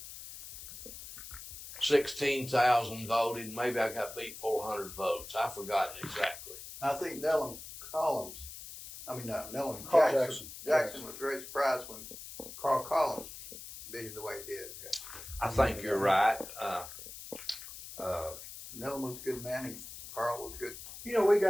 16,000 voted. Maybe I got beat 400 votes. I've forgotten exactly. I think Nellum Jackson. Jackson was very surprised when Carl Collins beat him the way he did. I think you're right. Nellum was a good man, and Carl was good. You know, we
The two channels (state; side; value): noise; left; hiss, 12 dB below the sound